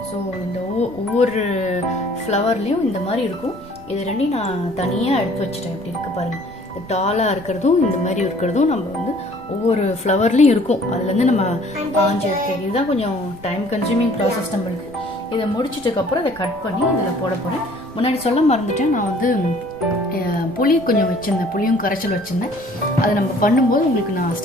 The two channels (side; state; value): right; noise; rumble, 24 dB below the sound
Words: ஸோ இந்த ஒவ்வொரு ஃப்ளவர்லேயும் இந்த மாதிரி இருக்கும். இது 2யும் நான் தனியாக எடுத்து வச்சுட்டேன். இப்படி இருக்குது பாருங்கள். இந்த டாலாக இருக்கிறதும் இந்த மாதிரி இருக்கிறதும் நம்ம ஒவ்வொரு ஃப்ளவர்லேயும் இருக்கும். அதுலேருந்து நம்ம ஆஞ்சி எடுக்கிறது. இதுதான் கொஞ்சம் டைம் கன்சியூமிங் ப்ராசஸ் நம்மளுக்கு. இதை முடிச்சிட்டதுக்கப்புறம் இதை கட் பண்ணி இதில் போட போகிறேன். முன்னாடி சொல்ல மறந்துட்டேன், நான் புளி கொஞ்சம் வச்சுருந்தேன், புளியும் கரைச்சல் வச்சுருந்தேன். அதை நம்ம பண்ணும்போது உங்களுக்கு நான்